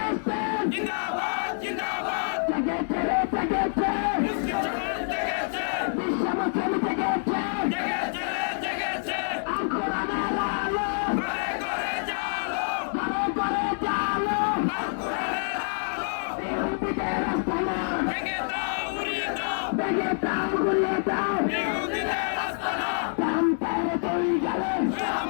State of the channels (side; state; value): right; silent; digital silence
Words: জিন্দাবাদ জিন্দাবাদ জেগেছে রে জেগেছে মুসলিম সমাজ জেগেছে বিশ্ব মুসলিম জেগেছে জেগেছে রে জেগেছে আল কোরআনের আলো ঘরে ঘরে জালো ঘরে ঘরে জালো আল কোরআনের আলো ইহুদিদের আস্তানা ভেঙে দাও উড়িয়ে দাও ভেঙে দাও গুলিয়ে দাও ইহুদিদের আস্তানা রামপের দুই গেলে